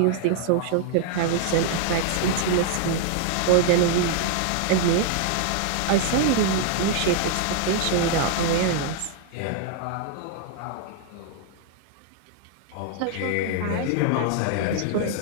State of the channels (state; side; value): different; both; correlation 0.00